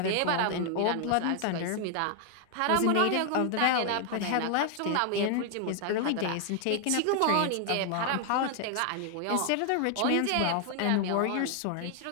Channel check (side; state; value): both; different; correlation 0.00